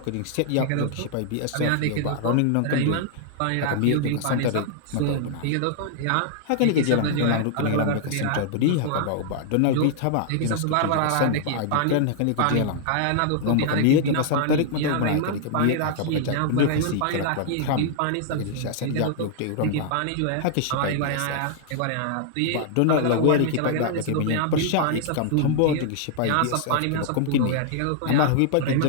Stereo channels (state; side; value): different; both; correlation -0.01